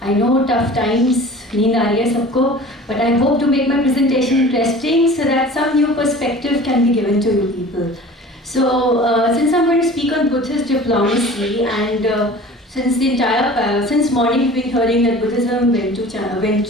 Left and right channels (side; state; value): both; normal; correlation 0.42